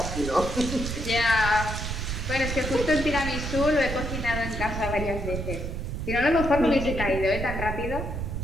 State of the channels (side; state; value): right; noise; rumble, 4 dB below the sound